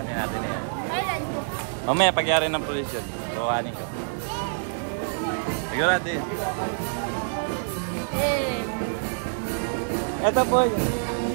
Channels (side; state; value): left; silent; digital silence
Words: natin yan. Mamaya pagyayari ng polisyon. Kuhanin ko. Siguro natin. Ito po.